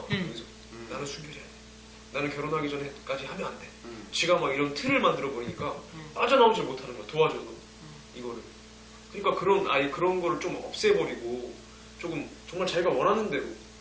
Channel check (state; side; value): identical; both; correlation 1.00